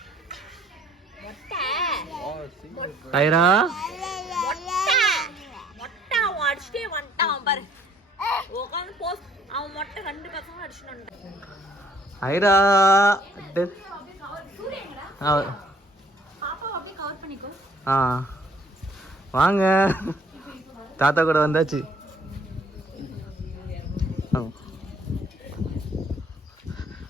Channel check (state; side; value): normal; both; correlation 0.60